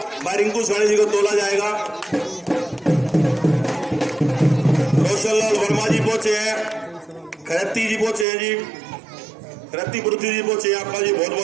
भाई रिंकू सैनी जी को तोला जाएगा। रोशन लाल वर्मा जी पहुंचे हैं, खरती जी पहुंचे हैं जी, खरती पृथ्वी जी पहुंचे हैं। आपका जी बहुत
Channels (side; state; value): left; drops out; at 8.2 s